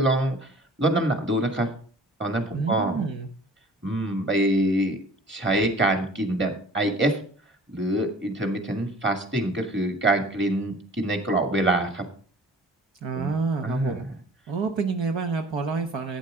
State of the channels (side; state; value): both; normal; correlation 0.49